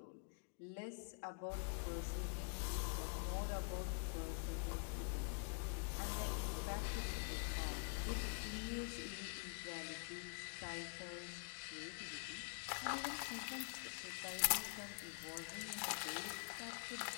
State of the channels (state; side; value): silent; right; digital silence